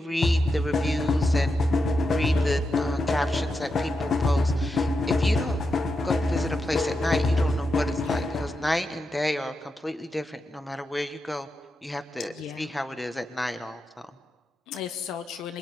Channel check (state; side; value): normal; both; correlation 0.87